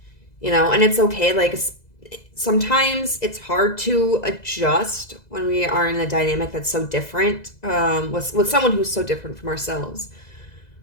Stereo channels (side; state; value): right; late; 2.0 ms